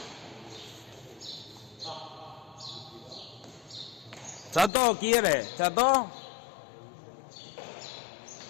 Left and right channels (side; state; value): right; drops out; at 4.7 s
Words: Chato, ¿quiere? Chato.